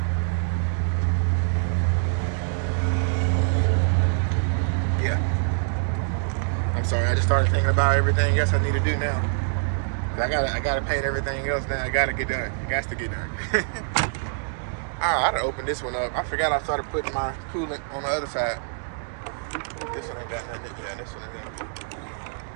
yeah. I'm sorry, I just started thinking about everything else I need to do now. I gotta paint everything else now. I gotta get done. It has to get done. I gotta open this one up. I forgot I started putting my coolant on the other side. This one ain't got nothing. Yeah, this one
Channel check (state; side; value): silent; left; digital silence